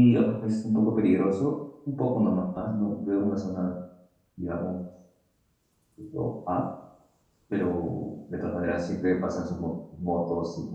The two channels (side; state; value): both; identical; correlation 1.00